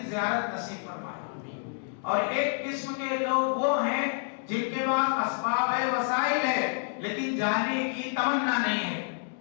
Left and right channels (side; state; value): right; silent; 59 dB below the other